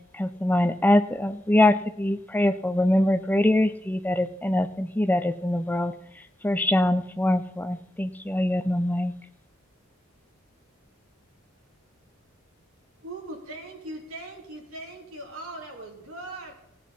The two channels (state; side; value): normal; both; correlation 0.88